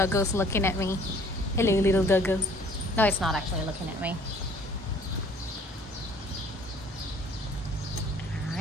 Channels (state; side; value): normal; both; correlation 0.55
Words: looking at me. Hello, little doggo. No, it's not actually looking at me.